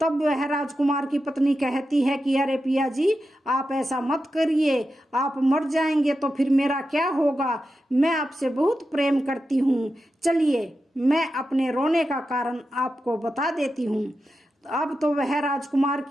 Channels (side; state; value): both; normal; correlation 0.90